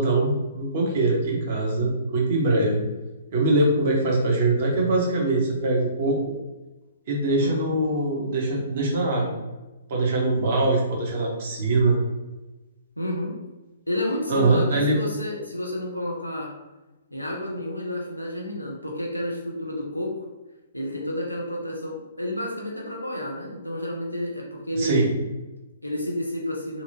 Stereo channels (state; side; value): inverted; both; correlation -0.56